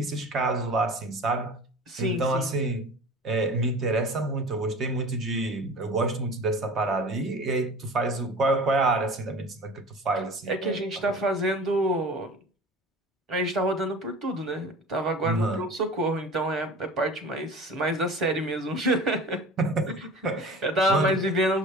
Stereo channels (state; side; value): normal; both; correlation 0.39